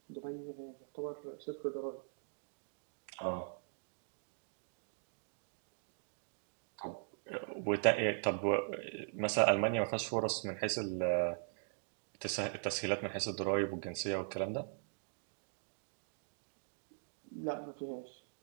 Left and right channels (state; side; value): silent; left; digital silence